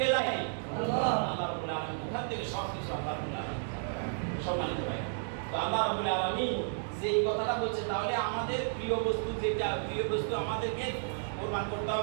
জানে? আল্লাহ। আল্লাহ রাব্বুল আলামিন ওখান থেকে সব কিছু আল্লাহ রাব্বুল আলামিন সম্মানিত ভাই। তো আল্লাহ রাব্বুল আলামিন যে এই কথাটা বলছে, তাহলে আমাদের প্রিয় বস্তু যেটা, প্রিয় বস্তু আমাদেরকে কুরবান করতে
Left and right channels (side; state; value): left; silent; 56 dB below the other